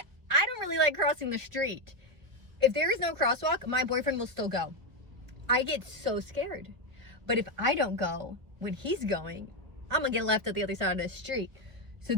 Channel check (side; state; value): left; late; 1.3 ms